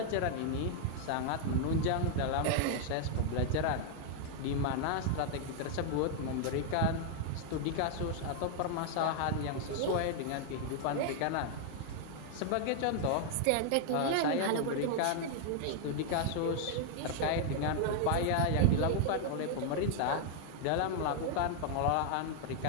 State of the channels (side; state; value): both; different; correlation 0.00